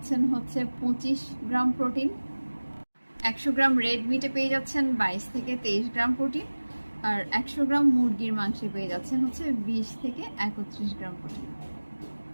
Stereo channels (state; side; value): inverted; both; correlation -1.00